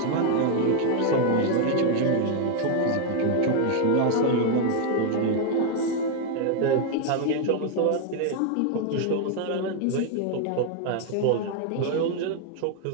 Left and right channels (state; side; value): different; both; correlation 0.00